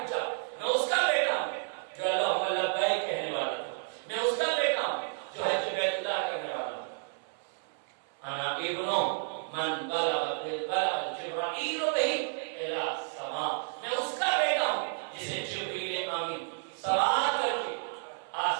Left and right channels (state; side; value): silent; left; 57 dB below the other